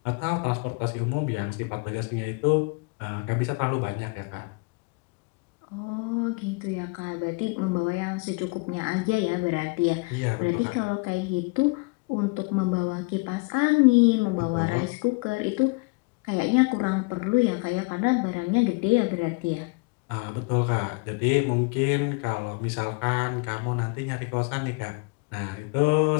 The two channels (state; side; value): quieter; right; 29.7 dB